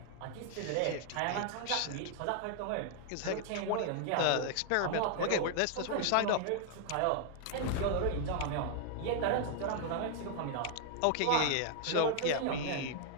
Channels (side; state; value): both; different; correlation 0.00